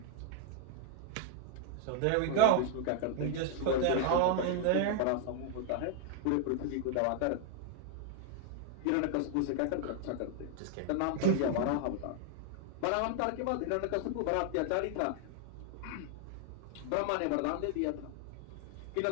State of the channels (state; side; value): different; both; correlation 0.00